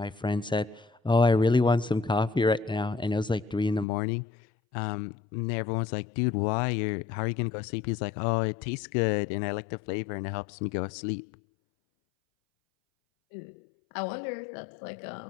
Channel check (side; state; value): right; drops out; at 3.9 s